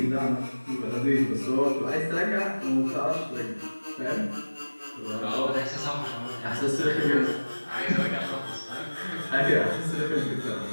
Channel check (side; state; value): both; inverted; correlation -1.00